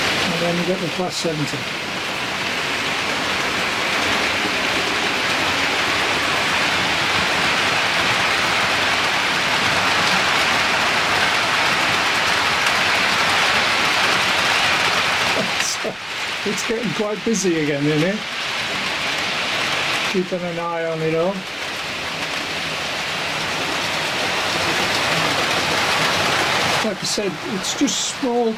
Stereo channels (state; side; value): identical; both; correlation 1.00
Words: And then you get the Class 70. So it's getting quite busy again, isn't it? Keeping an eye on it all. Like I said, it's just small